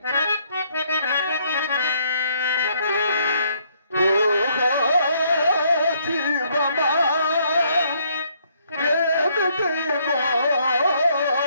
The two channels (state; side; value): inverted; both; correlation -0.69